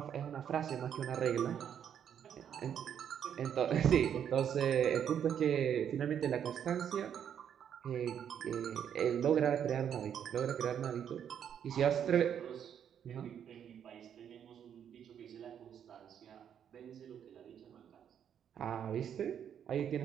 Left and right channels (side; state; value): left; quieter; 8.8 dB